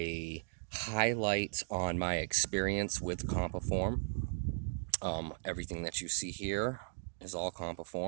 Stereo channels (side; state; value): left; silent; digital silence